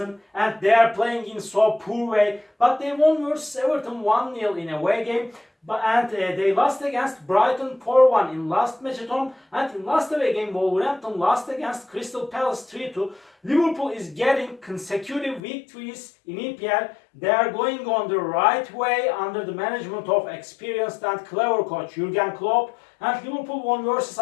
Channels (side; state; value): right; drops out; at 15.4 s